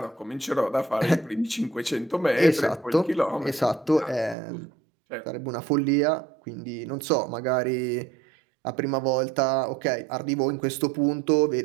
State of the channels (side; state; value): left; drops out; at 4.4 s